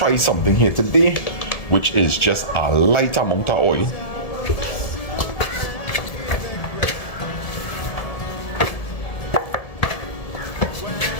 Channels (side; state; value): right; late; 1.7 ms